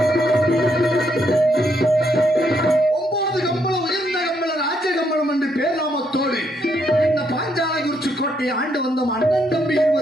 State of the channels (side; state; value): both; normal; correlation 0.75